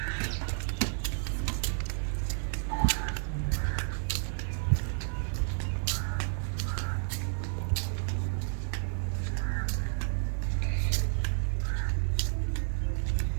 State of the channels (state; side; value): silent; left; digital silence